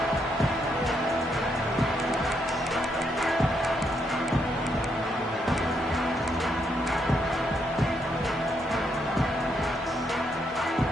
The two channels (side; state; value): both; normal; correlation 0.77